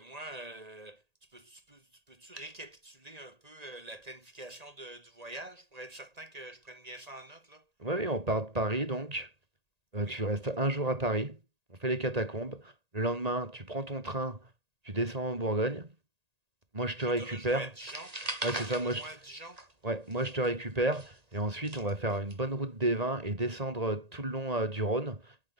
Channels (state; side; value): late; left; 1.8 ms